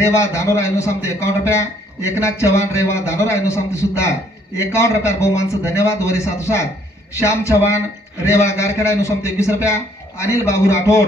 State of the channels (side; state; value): both; normal; correlation 0.65